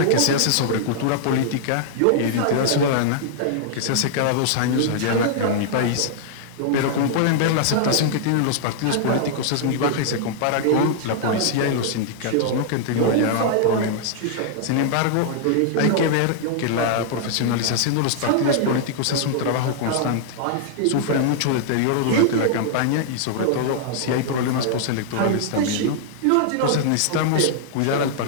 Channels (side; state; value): both; different; correlation -0.01